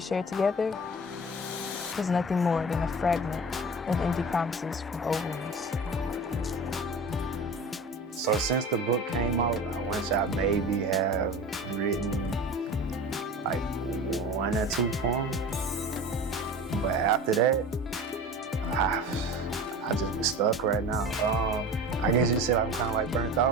together was nothing more than a fragment of empty promises from old wounds. So since the book came out, I want I maybe have written like 1 or 2 poems. But after that, I just been stuck right now. I guess you could say I'm kind of like burnt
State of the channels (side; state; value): both; normal; correlation 0.35